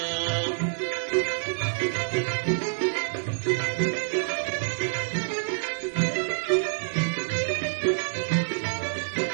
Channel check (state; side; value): silent; left; digital silence